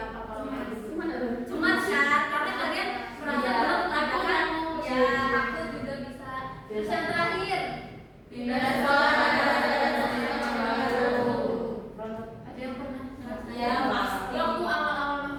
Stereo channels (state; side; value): identical; both; correlation 1.00